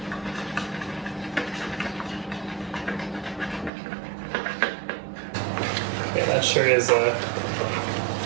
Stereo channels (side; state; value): left; drops out; at 3.7 s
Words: Yeah, that sure is a